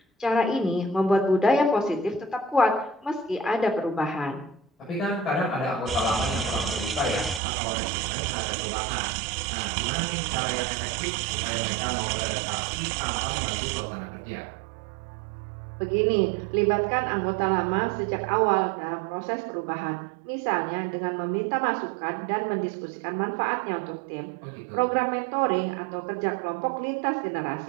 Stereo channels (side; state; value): left; drops out; at 7.4 s